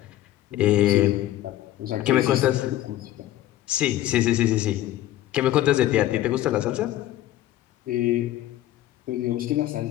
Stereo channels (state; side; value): quieter; right; 14.0 dB